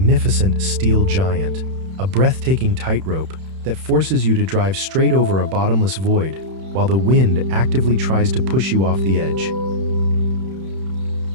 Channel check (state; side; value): late; left; 31 ms